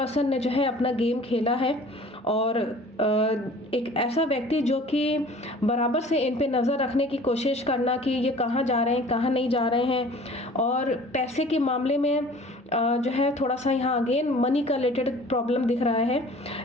ने जो है अपना गेम खेला है और एक ऐसा व्यक्ति जो कि बराबर से इन पे नज़र रखने की कोशिश करना कि ये कहाँ जा रहे हैं कहाँ नहीं जा रहे हैं, और पैसे के मामले में जो है थोड़ा सा यहाँ अगेन मनी का रिलेटेड प्रॉब्लम दिख रहा है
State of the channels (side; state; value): both; normal; correlation 0.47